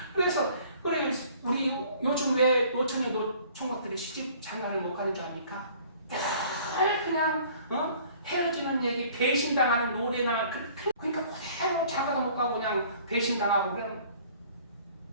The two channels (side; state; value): both; inverted; correlation -0.53